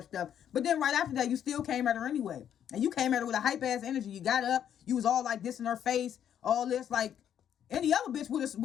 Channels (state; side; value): quieter; right; 9.5 dB